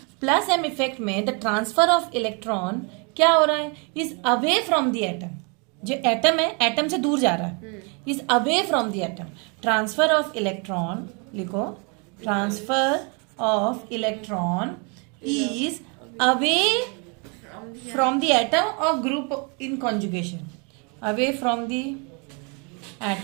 +M इफेक्ट में द ट्रांसफर ऑफ इलेक्ट्रॉन क्या हो रहा है, is away from the atom. जो एटम है, एटम से दूर जा रहा है, is away from the atom. Transfer of electron, लिखो, transfer of electron is away from the atom or group in conjugation, away from the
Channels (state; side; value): quieter; left; 34.1 dB